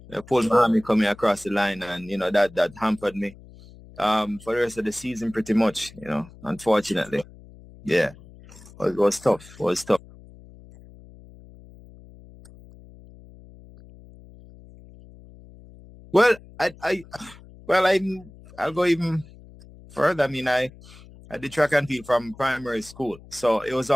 pulled my hammy coming across the line, and that hampered me for the rest of the season pretty much. Unfortunately, yeah, Whoa. it was tough. But It was tough. if we could backtrack a bit, how did you get involved in a track and field at Monroe College? Well, I'll go even further. I mean, I did track and field from primary school, so it was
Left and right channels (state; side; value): noise; left; hum, 21 dB below the sound